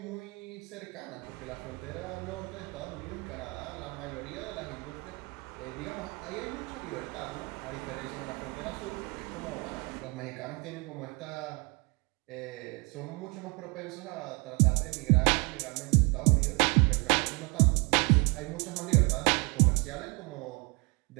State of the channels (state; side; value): quieter; left; 29.0 dB